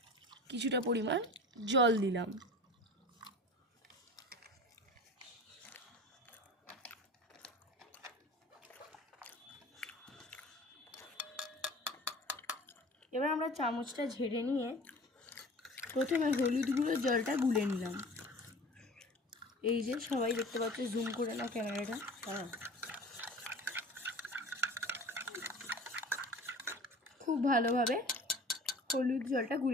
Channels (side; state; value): both; normal; correlation 0.40